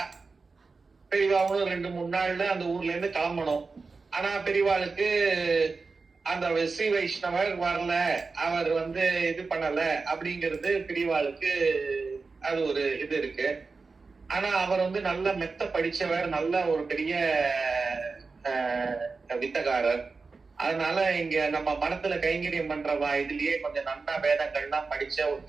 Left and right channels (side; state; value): left; quieter; 4.3 dB